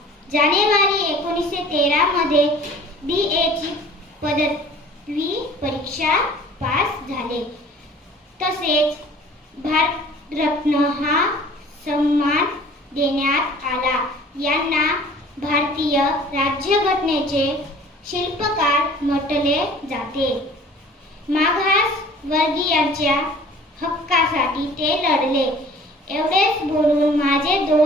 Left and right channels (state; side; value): normal; both; correlation 0.49